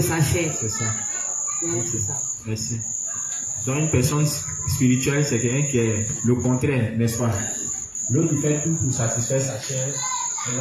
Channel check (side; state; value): both; identical; correlation 1.00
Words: sa chair. C'est ça. Oui, c'est ça. Merci. Donc une personne spirituelle, c'est quelqu'un qui est le contraire, n'est-ce pas? L'autre qui fait tout pour satisfaire sa chair, ses